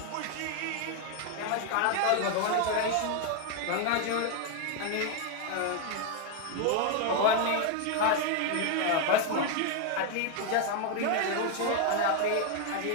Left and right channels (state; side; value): different; both; correlation 0.01